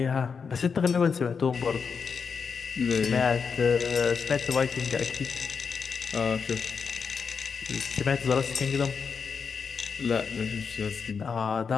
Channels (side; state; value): right; quieter; 5.8 dB